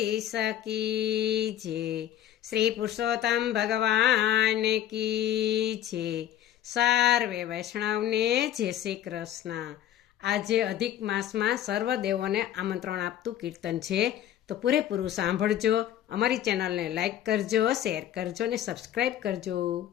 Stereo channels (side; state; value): right; quieter; 11.5 dB